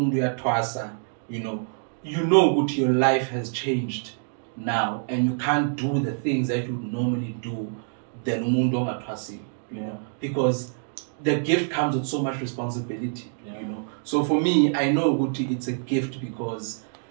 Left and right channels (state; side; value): silent; left; digital silence